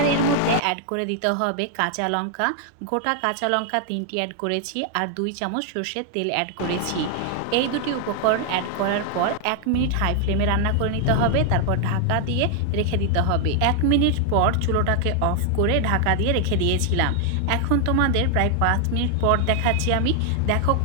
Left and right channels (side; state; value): both; different; correlation 0.00